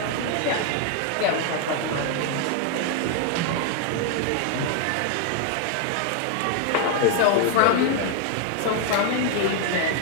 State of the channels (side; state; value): both; different; correlation 0.00